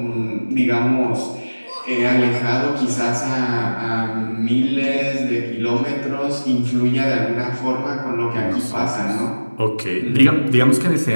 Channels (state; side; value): inverted; both; correlation -1.00